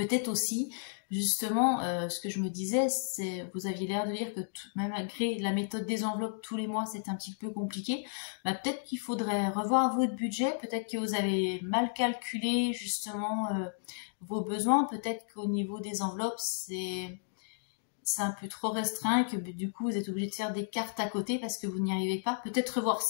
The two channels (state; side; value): silent; right; digital silence